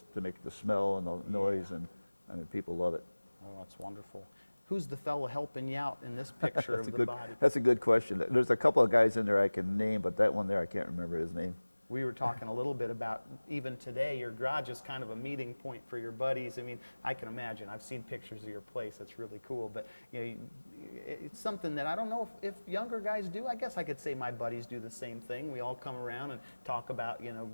to make the smell and the noise, and I mean people love it. Oh, that's wonderful. Who's the fellow helping you out in this picture of the body? That's a good question. There's a couple of guys in there I can name, but that one there I can't remember his name. We were talking a little bit about, even today, your garage is kind of a meeting point for your buddies. I mean, I can imagine. I've seen pictures of your place. It's really cool. But it's something that I don't know if younger guys do. I guess I could say my buddies do the same thing. We all come around and talk about,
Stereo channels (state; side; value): inverted; both; correlation -1.00